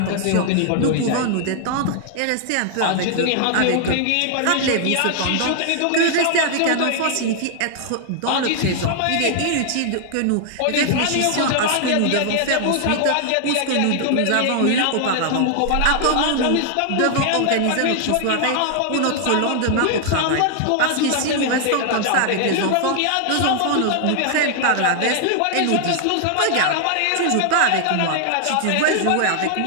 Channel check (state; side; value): different; both; correlation 0.00